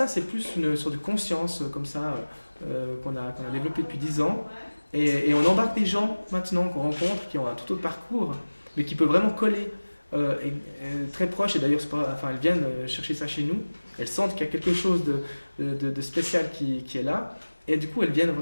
c'est plus une sorte de conscience comme ça qu'on a développée depuis 10 ans. Et on embarque des gens maintenant qu'on rencontre qui ont un tout autre parcours, mais qui peuvent vraiment coller et très proches. Et d'ailleurs, elles viennent chercher ça chez nous. Elles sentent qu'il y a quelque chose de spécial qui est là. Et du coup, elles viennent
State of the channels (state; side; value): inverted; both; correlation -1.00